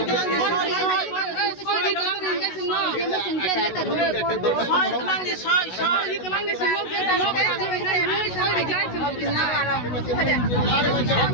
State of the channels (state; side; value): late; right; 16 ms